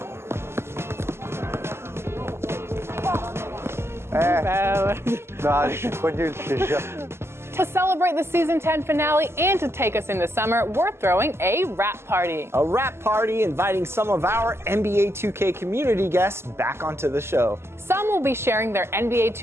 To celebrate the Season 10 finale and to take us into summer, we're throwing a rap party. A rap party inviting some of our NBA 2K community guests back onto the show. Some will be sharing their NBA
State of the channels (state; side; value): late; left; 0.12 ms